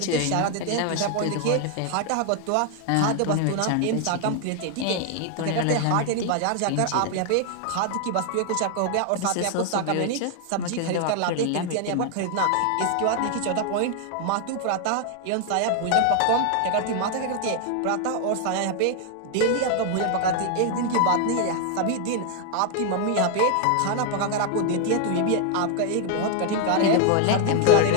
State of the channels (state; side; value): different; both; correlation 0.00